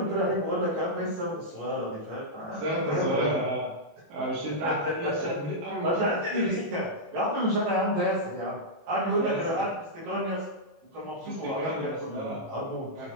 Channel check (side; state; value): left; late; 18 ms